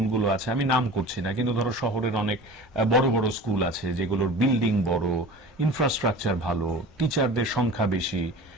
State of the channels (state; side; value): normal; both; correlation 0.38